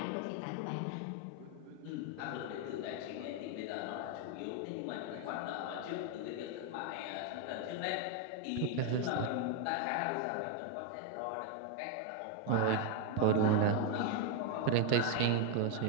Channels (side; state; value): both; different; correlation 0.01